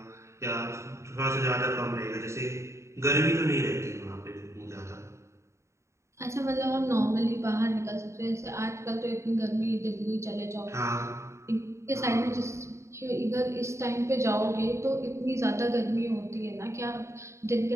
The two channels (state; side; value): late; left; 0.14 ms